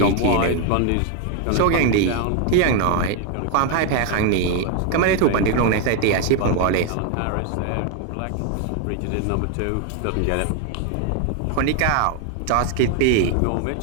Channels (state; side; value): different; both; correlation 0.01